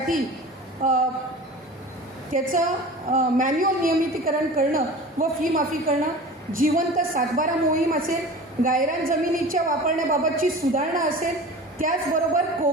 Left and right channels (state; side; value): normal; both; correlation 0.37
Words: त्याचं मॅन्युअल नियमितीकरण करणं व फी माफी करणं, जिवंत सातबारा मोहीम असेल, गायरान जमिनीच्या वापरण्याबाबतची सुधारणा असेल, त्याचबरोबर